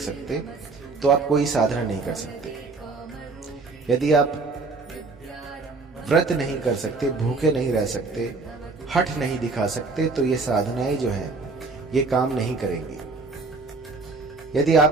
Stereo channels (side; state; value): left; quieter; 3.9 dB